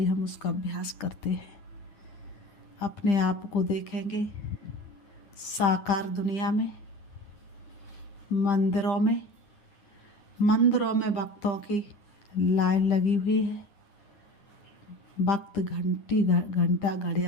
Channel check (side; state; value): right; late; 9.7 ms